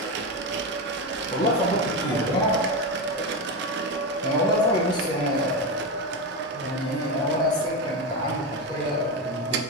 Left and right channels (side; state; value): both; normal; correlation 0.14